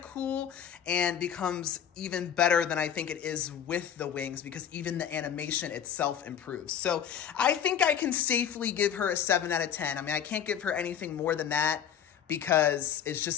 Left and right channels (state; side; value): quieter; right; 8.9 dB